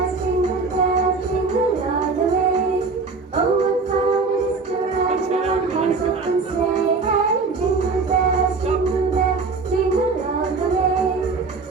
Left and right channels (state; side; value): quieter; left; 4.3 dB